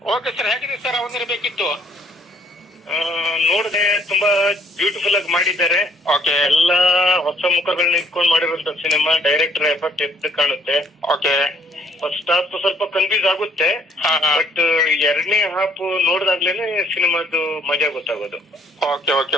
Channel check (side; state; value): both; normal; correlation 0.63